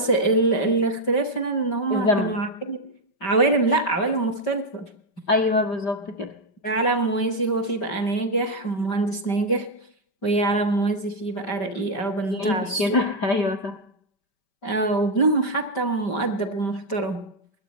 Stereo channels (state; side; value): late; right; 5.2 ms